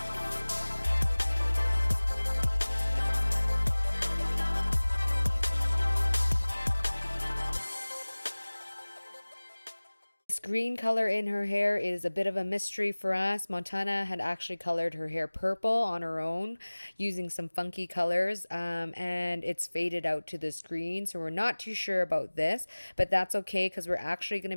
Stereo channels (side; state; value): both; inverted; correlation -1.00